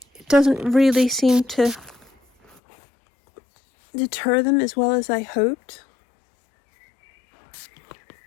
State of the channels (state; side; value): drops out; right; at 2.6 s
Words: it doesn't really seem to deter them as well as I hoped.